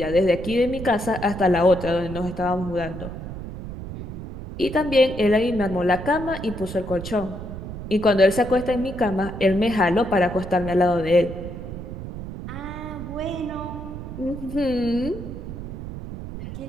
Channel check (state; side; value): noise; right; rumble, 9 dB below the sound